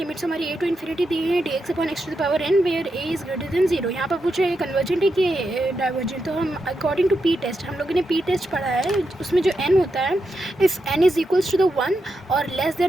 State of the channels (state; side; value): normal; both; correlation 0.85